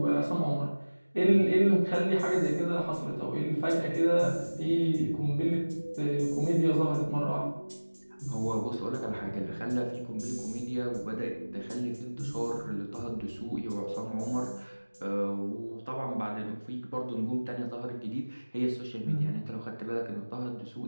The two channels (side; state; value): both; inverted; correlation -1.00